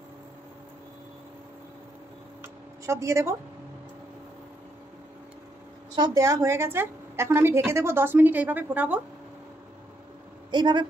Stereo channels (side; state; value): both; normal; correlation 0.76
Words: সব দিয়ে দেব। সব দেওয়া হয়ে গেছে। এখন আমি ঢেকে দেবো 10 মিনিট। এইভাবে ফোটাবো, এইভাবে